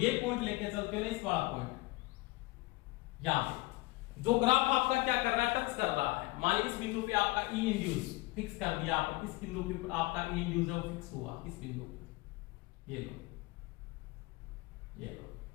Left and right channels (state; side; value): quieter; right; 22.4 dB